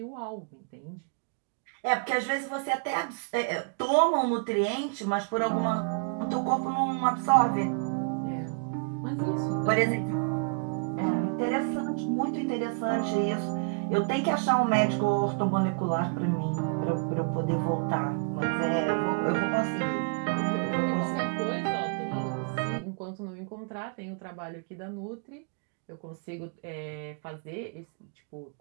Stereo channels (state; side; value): quieter; left; 38.2 dB